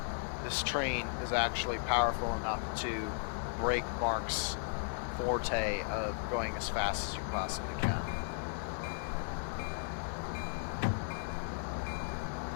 This train is actually powerful enough to break MARC's forte of going as fast as you possibly can.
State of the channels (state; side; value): silent; right; digital silence